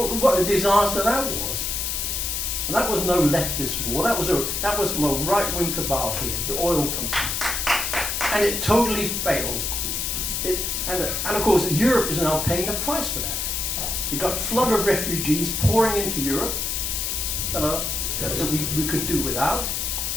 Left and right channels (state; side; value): noise; left; hiss, 1 dB below the sound